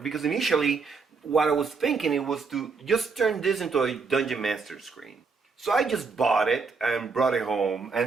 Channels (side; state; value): left; quieter; 4.8 dB